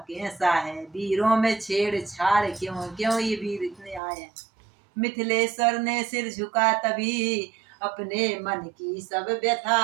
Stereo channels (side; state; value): left; drops out; at 4.0 s